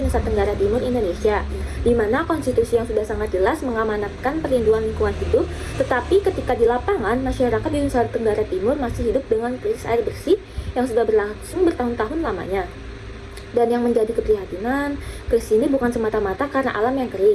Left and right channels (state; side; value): identical; both; correlation 1.00